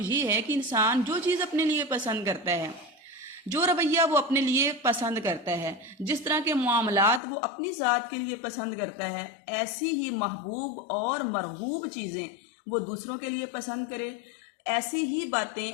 یہ ہے کہ انسان جو چیز اپنے لیے پسند کرتا ہے، جو رویہ وہ اپنے لیے پسند کرتا ہے، جس طرح کے معاملات وہ اپنی ذات کے لیے پسند کرتا ہے، ایسی ہی محبوب اور مرغوب چیزیں وہ دوسروں کے لیے پسند کرے، ایسی ہی باتیں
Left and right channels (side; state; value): right; drops out; at 7.2 s